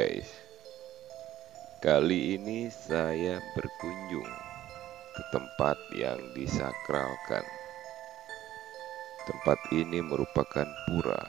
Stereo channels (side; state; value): left; quieter; 13.4 dB